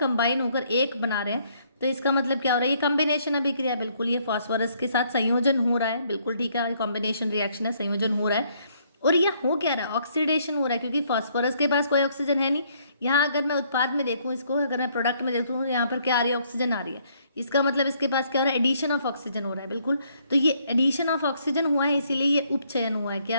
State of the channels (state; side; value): inverted; both; correlation -0.67